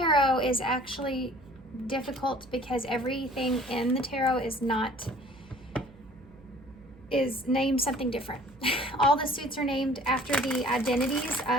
is actually difficult because everything in the tarot is named something different. All the suits are named after the identities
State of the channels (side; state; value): right; noise; hum, 25 dB below the sound